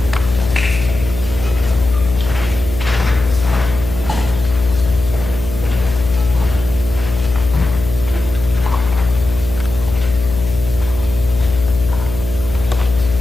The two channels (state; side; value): noise; left; hum, 8 dB below the sound